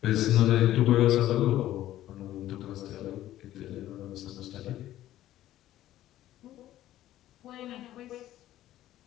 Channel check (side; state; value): right; quieter; 13.7 dB